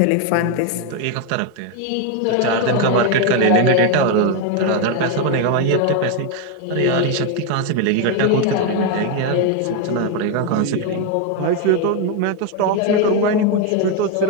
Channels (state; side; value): different; both; correlation 0.01